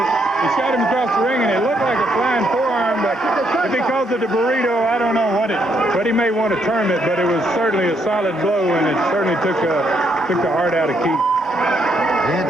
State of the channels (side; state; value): both; normal; correlation 0.74